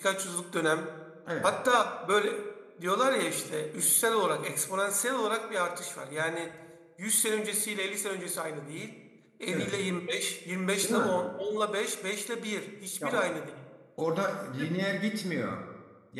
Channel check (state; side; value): identical; both; correlation 1.00